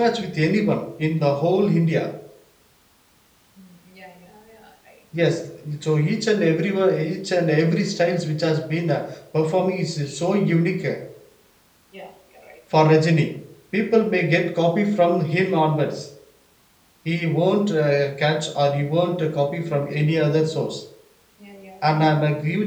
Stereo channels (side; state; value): both; identical; correlation 1.00